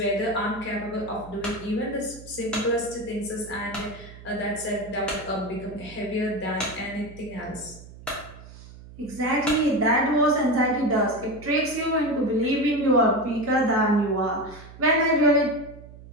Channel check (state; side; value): noise; right; hum, 18 dB below the sound